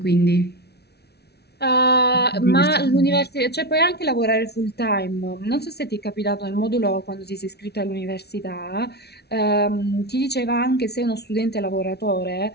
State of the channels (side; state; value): right; late; 0.48 ms